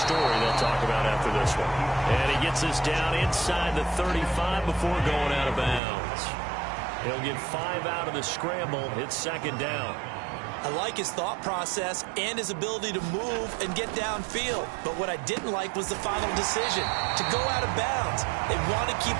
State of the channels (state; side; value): drops out; left; at 5.8 s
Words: they'll talk about after this one. And he gets us down inside the 35 before going out of bounds. He'll get 5 out of the scramble. It's second down. I like his thought process and his ability to move and get downfield. But what I didn't like was the final decision, to go out of bounds. They want to keep